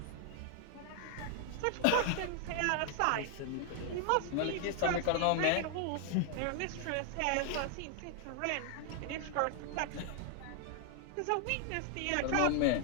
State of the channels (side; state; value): both; different; correlation 0.00